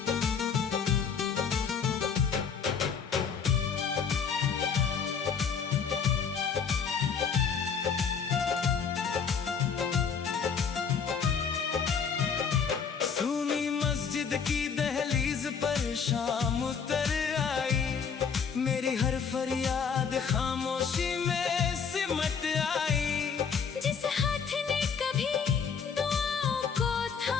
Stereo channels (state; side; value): quieter; right; 6.4 dB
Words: की दहलीज पर शाम उतर आई। मेरी हर फरियाद खामोशी में सिमट आई। जिस हाथ ने कभी दुआओं को